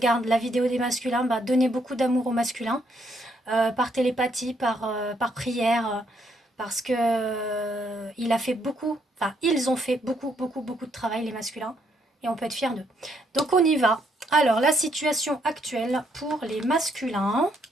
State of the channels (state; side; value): normal; both; correlation 0.73